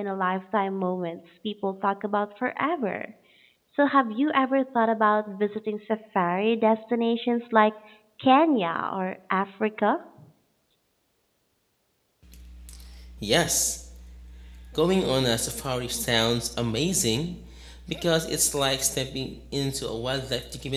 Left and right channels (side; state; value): both; identical; correlation 1.00